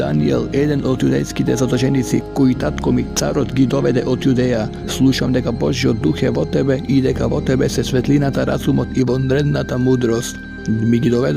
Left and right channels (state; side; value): identical; both; correlation 1.00